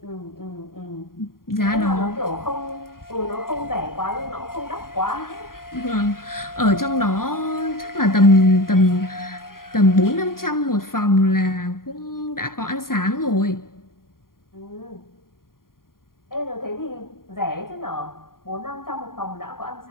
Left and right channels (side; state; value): right; late; 0.91 ms